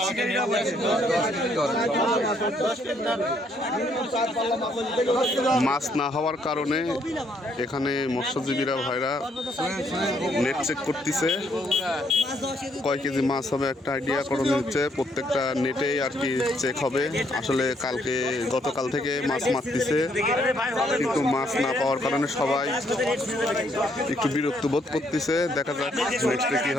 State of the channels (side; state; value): both; normal; correlation 0.70